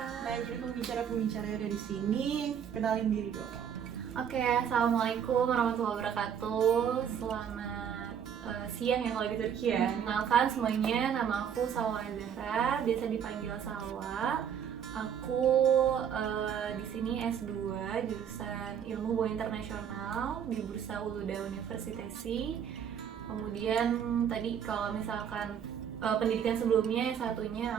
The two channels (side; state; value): left; quieter; 8.3 dB